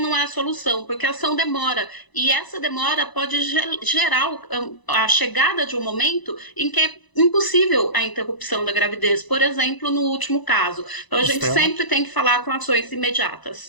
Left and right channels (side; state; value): right; late; 1.0 ms